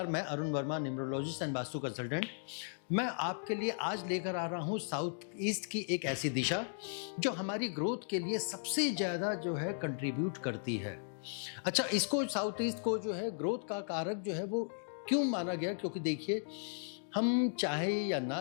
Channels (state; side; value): silent; right; digital silence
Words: मैं Arun Verma, numerologist and vastu consultant. मैं आपके लिए आज लेकर आ रहा हूँ साउथ ईस्ट की एक ऐसी दिशा जो हमारी ग्रोथ के लिए सबसे ज़्यादा जो है कंट्रीब्यूट करती है। अच्छा, इसको साउथ ईस्ट को जो है ग्रोथ का कारक जो है वो क्यों माना गया? क्योंकि देखिए, हम चाहे या